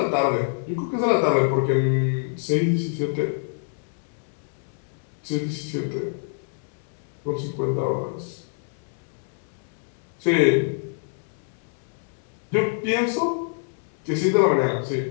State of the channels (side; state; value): right; silent; digital silence